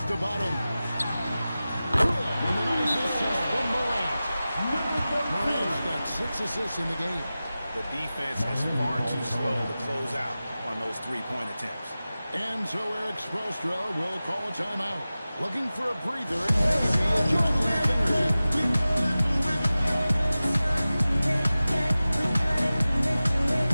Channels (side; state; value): both; inverted; correlation -0.96